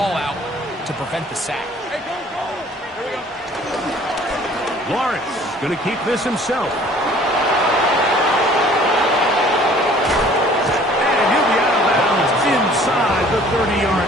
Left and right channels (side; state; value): both; normal; correlation 0.53